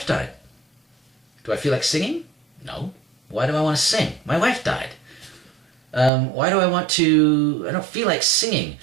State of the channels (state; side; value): drops out; left; at 6.1 s